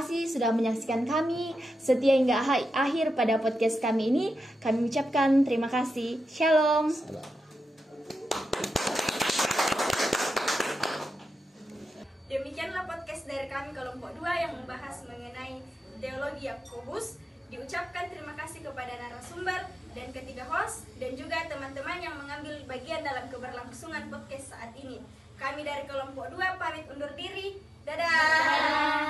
sudah menyaksikan kami setia hingga akhir pada podcast kami ini. Kami ucapkan terima kasih. Shalom. Demikianlah podcast dari kami kelompok 2 yang membahas mengenai teologi Yakobus. Diucapkan terima kasih kepada narasumber dan ketiga host dan juga teman-teman yang mengambil bagian dalam keberlangsungan podcast saat ini. Kami dari kelompok 2 pamit undur diri.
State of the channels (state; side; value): normal; both; correlation 0.90